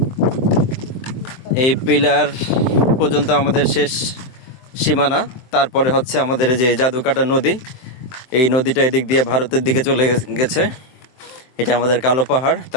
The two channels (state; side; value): late; right; 23 ms